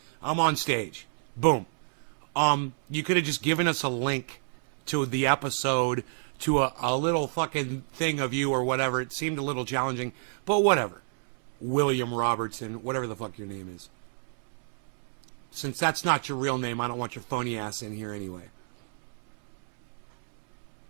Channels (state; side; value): silent; left; 58 dB below the other